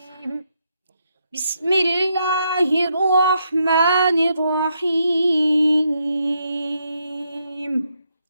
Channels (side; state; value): both; inverted; correlation -0.78